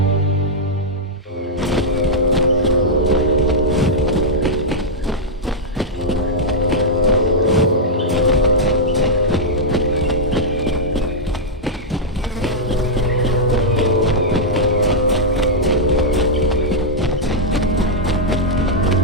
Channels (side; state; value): both; normal; correlation -0.07